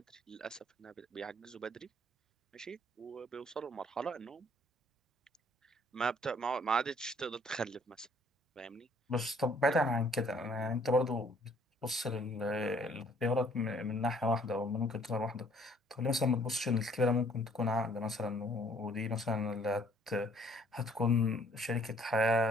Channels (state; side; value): normal; both; correlation 0.60